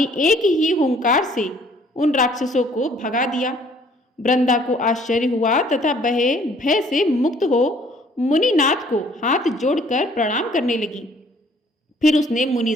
एक ही हुंकार से उन राक्षसों को भगा दिया। वृंदा को आश्चर्य हुआ तथा वह भय से मुक्त हो मुनिनाथ को हाथ जोड़कर प्रणाम करने लगी। फिर उसने मुनि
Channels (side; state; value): both; normal; correlation 0.59